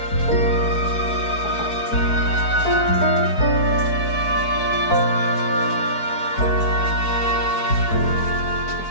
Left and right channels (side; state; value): right; late; 4.6 ms